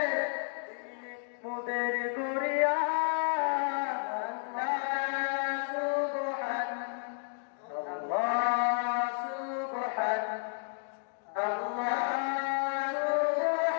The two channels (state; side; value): silent; right; digital silence